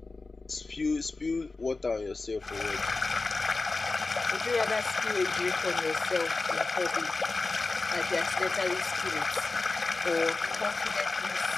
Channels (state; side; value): quieter; right; 3.6 dB